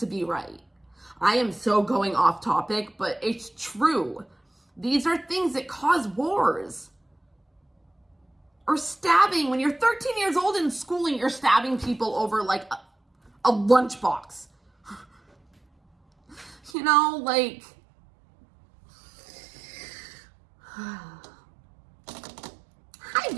be right. I am so going off topic, but it's true. These are things that cause wars. Or stabbing. When you're 13 years old in school and you're stabbing people over like a lunchbox. You know, like... Hi,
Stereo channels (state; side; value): drops out; left; at 16.7 s